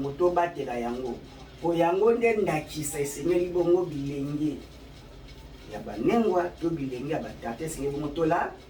to batela yango po yango nde ndakisa esengeli bongo bilenge ya banengwa to bilenge ya batata esengeli bongo tolanda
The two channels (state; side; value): identical; both; correlation 1.00